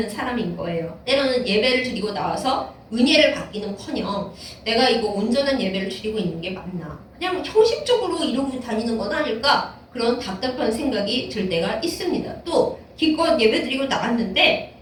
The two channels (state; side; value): identical; both; correlation 1.00